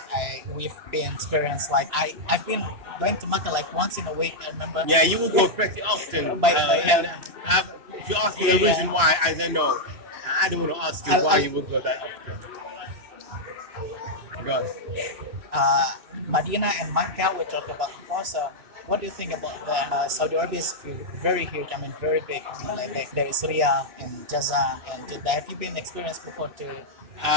we've been experienced. Like I've been going to Mecca like once in a week, I remember. Yeah, you will go pretty often. If you ask me the reason why, I don't know. I don't want to ask you why you would go that often. Go on. Medina and Mecca we talked about before. So what do you think about the Saudi Arabia is very huge, I mean very big. I mean, like there is Riyadh and Jazan and Jeddah. Have you been experienced before to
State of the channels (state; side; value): late; left; 3.0 ms